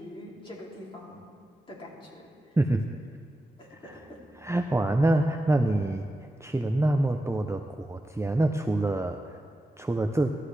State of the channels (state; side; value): normal; both; correlation 0.92